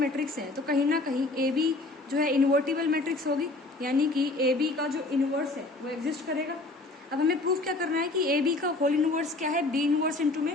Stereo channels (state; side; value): quieter; right; 3.0 dB